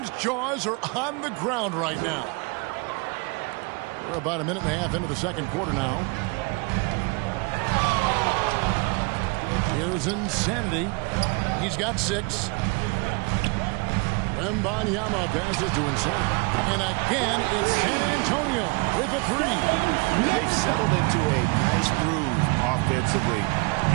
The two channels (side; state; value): left; quieter; 29.9 dB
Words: jaws are on the ground right now. We're about a minute and a half into the second quarter now. Here's Insanity. He's got 6. Wembanyama passes to Insanity. And again, it's San Antonio with a 3. They've settled into a nice groove offensively